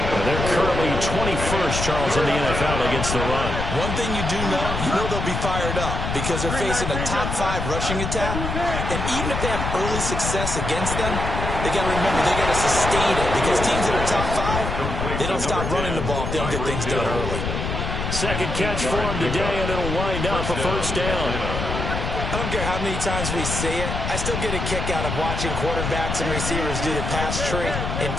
currently 21st, Charles, in the NFL against the run. One thing you do know, they'll be fired up because they're facing a top 5 rushing attack. And even if they have early success against them, they got to remember they got to sustain it because teams that are top 5, they don't stop running the ball if they don't get things done early. Second catch for him today, and it'll wind up a first down. I don't care how many times we say it, I still get a kick out of watching quarterbacks and receivers do the pass tree in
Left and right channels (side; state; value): left; noise; rumble, 3 dB below the sound